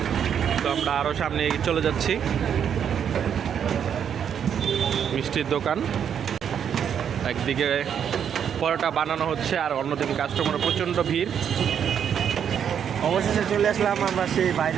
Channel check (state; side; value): quieter; left; 8.3 dB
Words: তো আমরা আরও সামনে এগিয়ে চলে যাচ্ছি। মিষ্টির দোকান, একদিকে পরোটা বানানো হচ্ছে আর অন্যদিকে কাস্টমারের প্রচণ্ড ভিড়। অবশেষে চলে আসলাম আমরা সেই